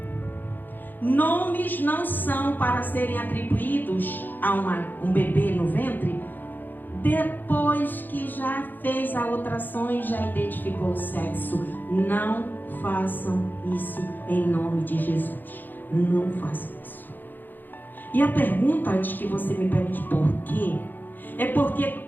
nomes não são para serem atribuídos a um bebê no ventre depois que já fez a ultrassom e já identificou o sexo. Não façam isso em nome de Jesus. Não façam isso. E a pergunta, antes que você me pergunte por quê, é porque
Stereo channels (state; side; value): late; right; 0.089 ms